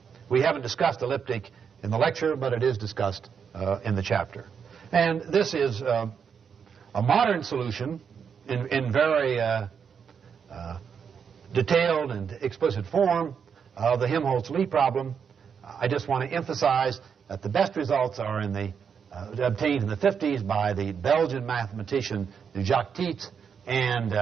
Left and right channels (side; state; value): left; quieter; 6.9 dB